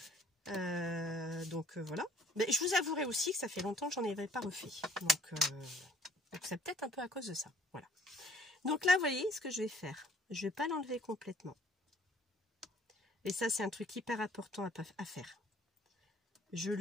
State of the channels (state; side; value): normal; both; correlation 0.58